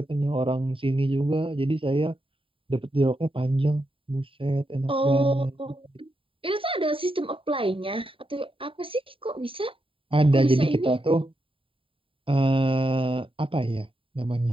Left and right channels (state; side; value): late; left; 0.26 ms